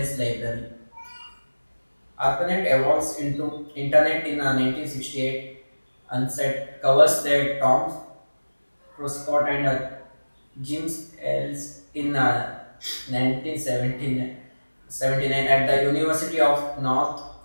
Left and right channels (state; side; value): inverted; both; correlation -1.00